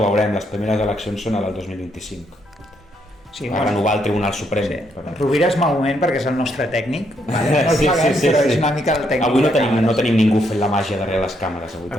veurem, les primeres eleccions són a del 2025. Sí, va renovar el Tribunal Suprem. Sí. Rovira és malament perquè és el nostre tècnic, vale? No el paguem, però és una mica el tècnic. Avui no tenim ningú fent la màgia darrere les càmeres.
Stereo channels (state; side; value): normal; both; correlation 0.75